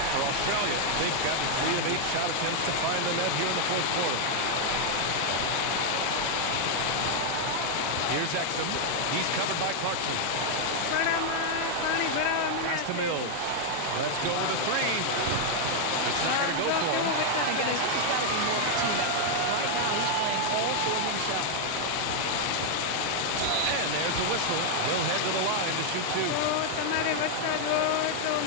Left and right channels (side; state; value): both; different; correlation 0.00